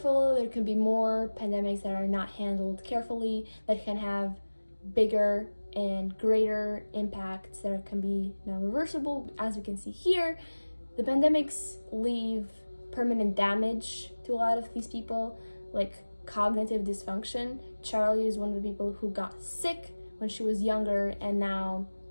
there could be more pandemics that are not handled carefully that can have bigger and greater impacts that can be non-reversible. As we can see here, the pandemics leave permanent damage to a lot of these people, like cognitive dysfunction. Charlie is one of the people who got sick when she was younger, and now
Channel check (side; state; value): both; inverted; correlation -1.00